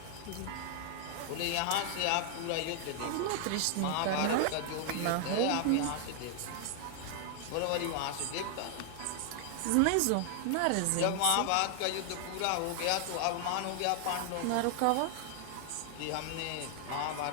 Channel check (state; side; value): different; both; correlation 0.00